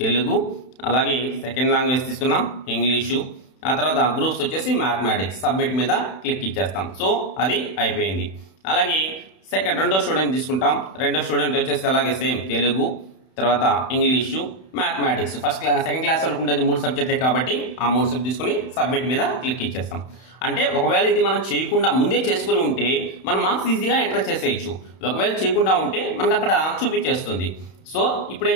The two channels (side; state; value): right; late; 31 ms